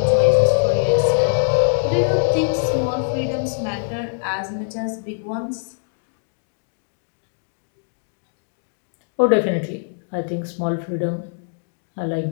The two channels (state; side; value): silent; right; digital silence